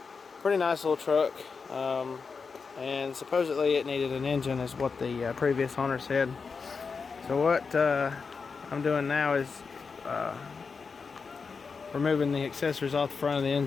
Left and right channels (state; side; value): quieter; right; 5.1 dB